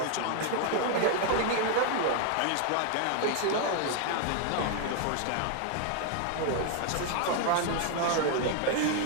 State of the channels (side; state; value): both; different; correlation 0.00